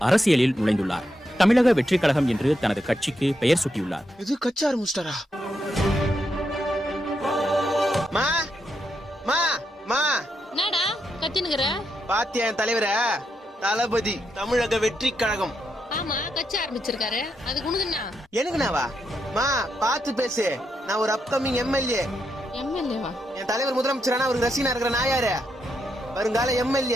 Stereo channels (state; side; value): normal; both; correlation 0.82